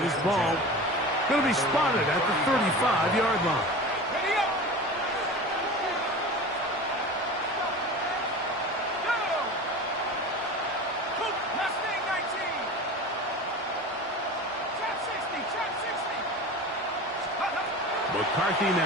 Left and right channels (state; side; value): normal; both; correlation 0.33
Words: ball going to be spotted at the 35-yard line. McCarthy